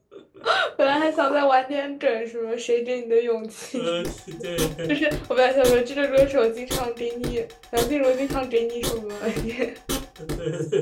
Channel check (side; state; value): both; identical; correlation 1.00